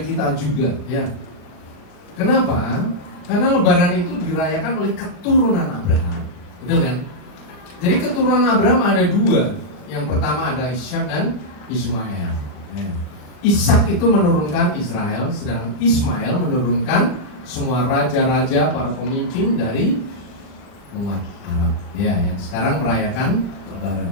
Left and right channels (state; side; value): late; right; 39 ms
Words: kita juga, ya. Kenapa? Karena Lebaran itu dirayakan oleh keturunan Abraham, betul kan? Jadi keturunan Abraham ada dua. Yang pertama ada Ishak dan Ismail. Ya. Ishak itu menurunkan Israel, sedangkan Ismail menurunkan semua raja-raja, para pemimpin dari umat Arab. Ya, yang sekarang merayakan